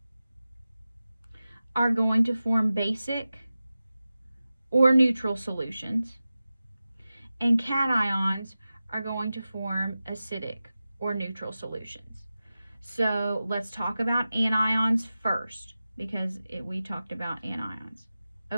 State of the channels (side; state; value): both; inverted; correlation -0.94